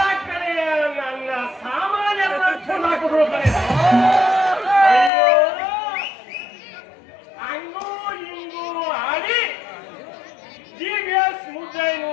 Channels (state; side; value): drops out; right; at 5.1 s